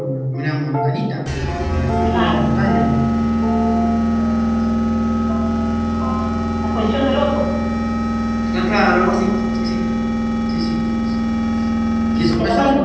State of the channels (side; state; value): both; identical; correlation 1.00